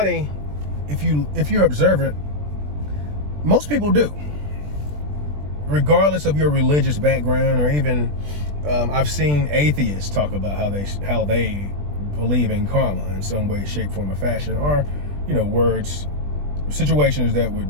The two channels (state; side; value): late; left; 20 ms